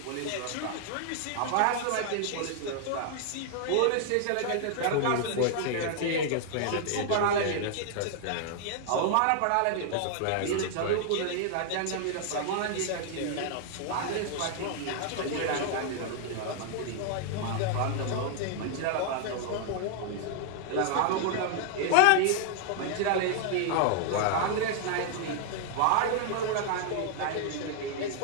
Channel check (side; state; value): both; different; correlation 0.00